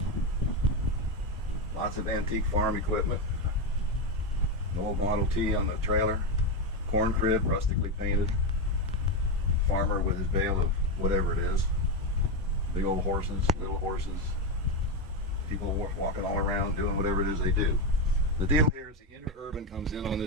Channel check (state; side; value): normal; both; correlation 0.10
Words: Lots of antique farm equipment. An old Model T on the trailer. Corn crib, rustically painted. Farmer with his bale of whatever it is. Big old horses, little horses, people walking all around doing whatever it is they do. The deal here is the interurban comes in on